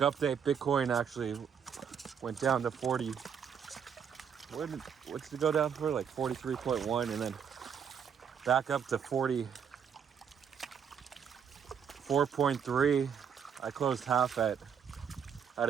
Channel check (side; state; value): left; quieter; 7.5 dB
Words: Bitcoin actually went down to 40. What's it go down for? Like 43.1, and then back up to 44.3. I closed half at a